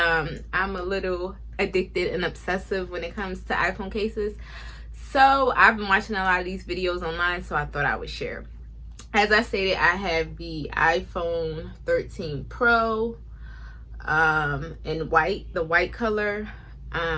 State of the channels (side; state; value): both; identical; correlation 1.00